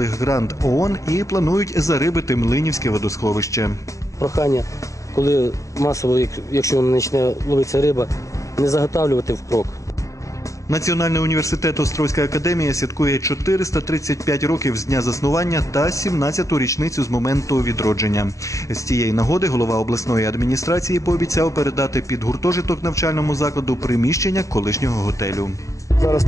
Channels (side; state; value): right; late; 0.16 ms